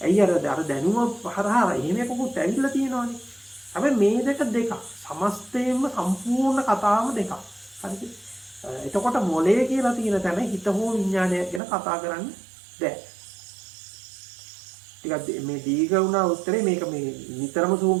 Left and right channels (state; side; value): drops out; left; at 11.6 s